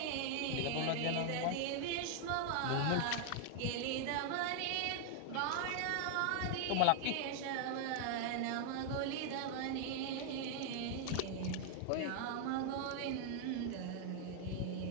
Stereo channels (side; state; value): both; different; correlation 0.00